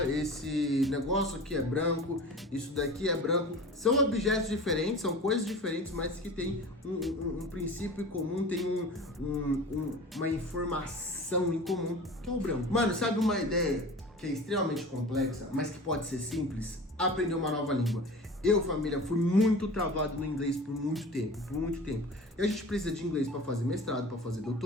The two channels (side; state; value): both; normal; correlation 0.37